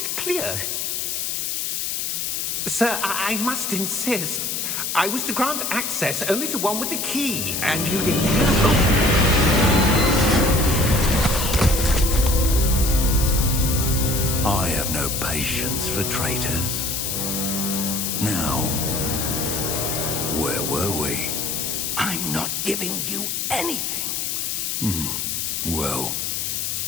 clear. Sir, I must insist. I was to grant access only to one with the key, and you didn't have I have no patience for traitors. Now, where were we? I'm not giving you anything. Well,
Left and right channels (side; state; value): left; noise; hiss, 1 dB below the sound